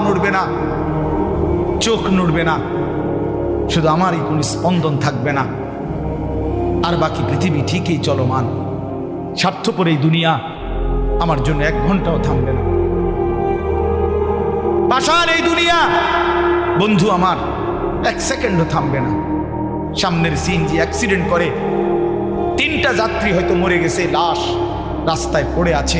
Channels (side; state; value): both; identical; correlation 1.00